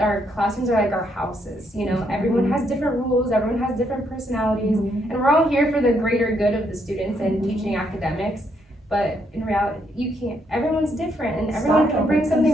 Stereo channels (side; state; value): both; normal; correlation 0.74